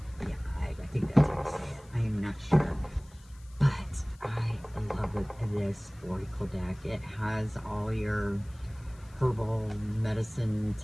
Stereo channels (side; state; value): left; noise; hiss, 27 dB below the sound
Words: Yeah, I think that's how you say it. I am not sure. But I love this Oracle deck. It has all your herbal medicine